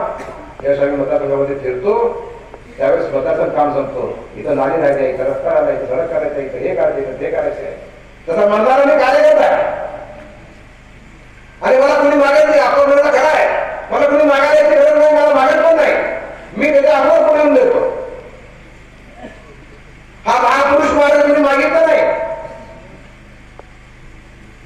यावेळेस आम्ही मतदारसंघामध्ये फिरतो, त्यावेळेस मतदारसंघ काम संपतो. इथं नाली नाही, इथं रस्ता नाही, इथं सडक करायचं, इथं हे करायचं, इथं ते करायचंय. तसा मतदार मी कार्यकर्ता आहे आणि मला कोणी मागत नाही. आपण म्हणणं खरं आहे, मला कोणी मागायला यायची गरज नाही, मला मागत पण नाही. मी त्याच्या अगोदर पुढे येऊन देतो. हा महापुरुष महाराज कोणी मागितलं नाही.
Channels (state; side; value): identical; both; correlation 1.00